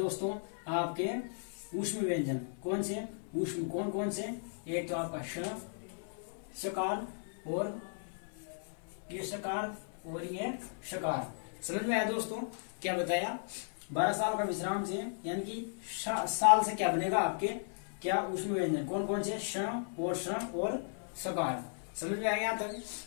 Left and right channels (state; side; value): silent; right; 54 dB below the other